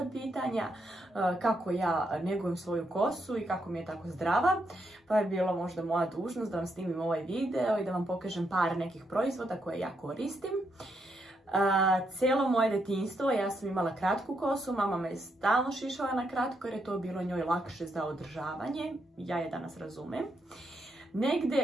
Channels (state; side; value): normal; both; correlation 0.79